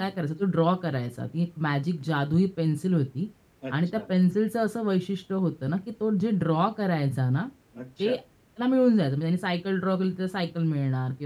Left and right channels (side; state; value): both; identical; correlation 1.00